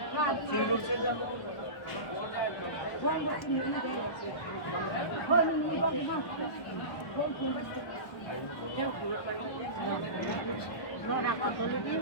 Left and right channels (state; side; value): late; right; 1.2 ms